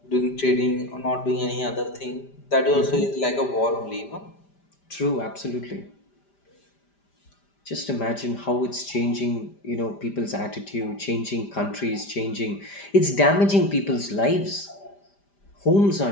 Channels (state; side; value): late; right; 5.0 ms